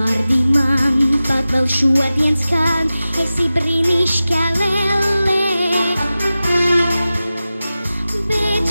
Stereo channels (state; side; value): inverted; both; correlation -0.95